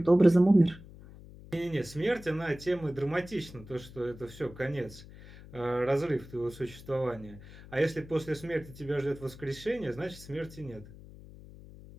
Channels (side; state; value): left; noise; hum, 18 dB below the sound